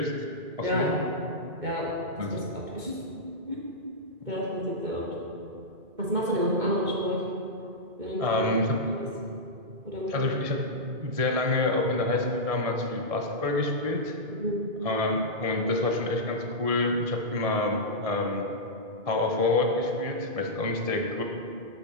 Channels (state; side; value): late; left; 2.2 ms